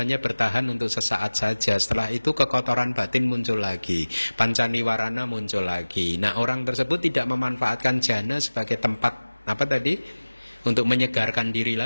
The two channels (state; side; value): inverted; both; correlation -1.00